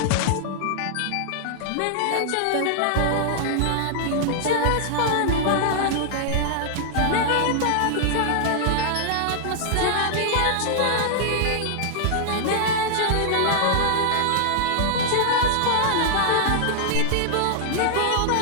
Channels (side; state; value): both; different; correlation -0.01